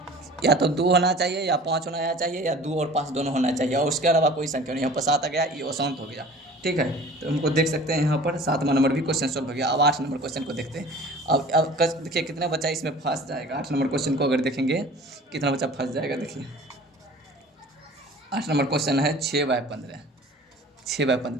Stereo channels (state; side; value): normal; both; correlation 0.44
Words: या तो 2 होना चाहिए या 5 होना चाहिए या 2 और 5 दोनों होना चाहिए, और उसके अलावा कोई संख्या नहीं। यहाँ पर 7 आ गया, ये अशांत हो गया। ठीक है, तो हमको देख सकते हैं यहाँ पर 7वां नंबर भी क्वेश्चन सॉल्व हो गया। अब 8 नंबर क्वेश्चन को देखते हैं। अब देखिए कितना बच्चा इसमें फंस जाएगा। 8 नंबर क्वेश्चन को अगर देखेंगे कितना बच्चा फंस जाएगा, देखिए 8 नंबर क्वेश्चन है 6/15,